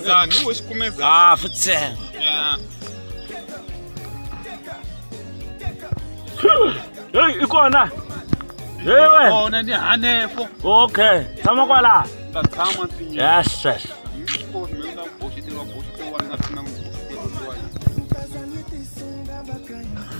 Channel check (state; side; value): inverted; both; correlation -1.00